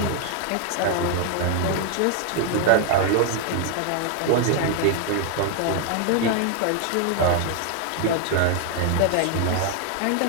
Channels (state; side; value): different; both; correlation 0.00